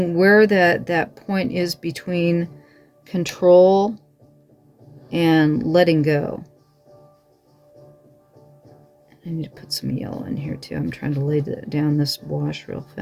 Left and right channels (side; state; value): both; identical; correlation 1.00